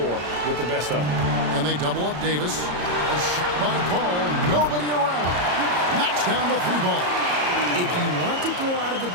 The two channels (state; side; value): late; left; 34 ms